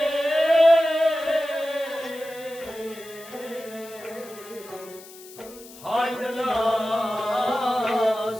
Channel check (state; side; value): noise; left; hiss, 19 dB below the sound